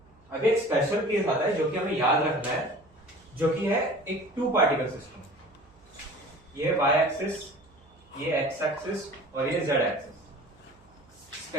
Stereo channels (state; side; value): noise; right; hum, 29 dB below the sound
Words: अब एक स्पेशल केस आता है जो कि हमें याद रखना है, जो कि है एक टू पार्टिकल सिस्टम। ये y एक्सिस, ये x एक्सिस और ये z एक्सिस।